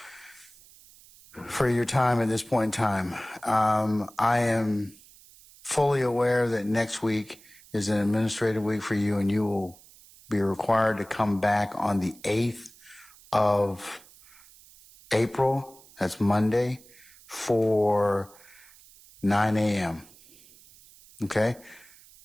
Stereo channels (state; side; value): noise; right; hiss, 24 dB below the sound